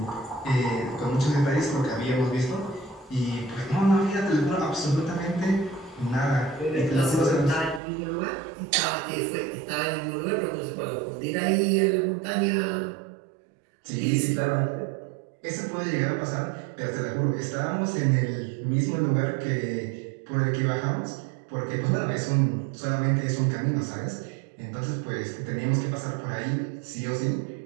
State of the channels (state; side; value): drops out; left; at 7.8 s